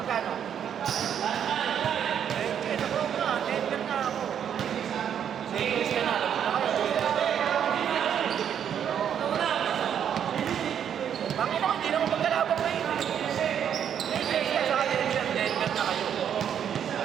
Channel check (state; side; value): quieter; left; 8.8 dB